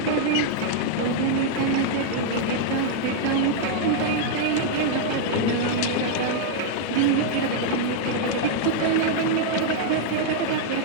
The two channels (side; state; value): both; different; correlation -0.01